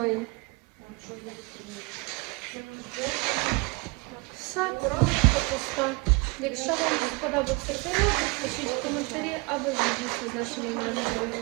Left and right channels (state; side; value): quieter; left; 28.0 dB